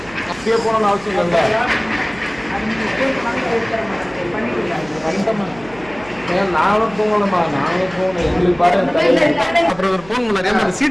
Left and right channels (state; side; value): noise; right; hum, 21 dB below the sound